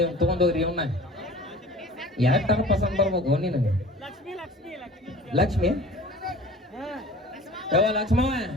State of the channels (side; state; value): both; normal; correlation 0.43